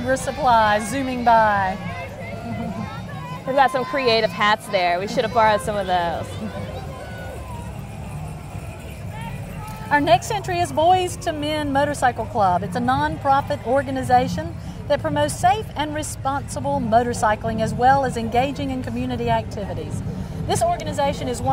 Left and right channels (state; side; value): identical; both; correlation 1.00